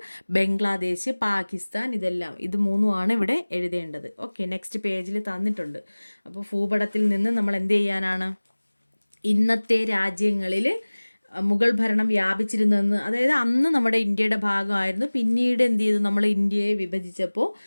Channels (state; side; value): inverted; both; correlation -1.00